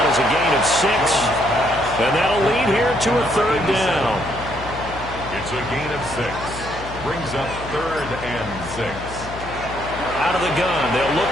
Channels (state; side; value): noise; left; hum, 13 dB below the sound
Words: as a gain of 6. And that'll lead here to a third down. It's a gain of 6. Brings up third and 6. Out of the gun, they'll look